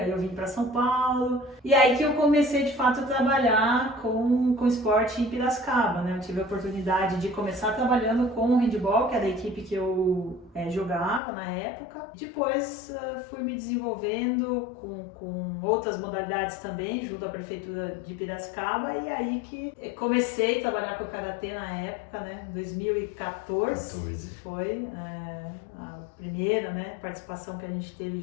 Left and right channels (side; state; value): right; drops out; at 11.2 s